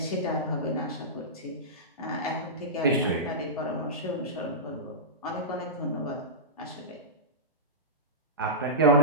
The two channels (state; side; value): normal; both; correlation -0.15